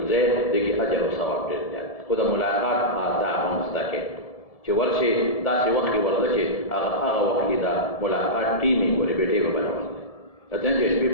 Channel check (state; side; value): late; right; 1.7 ms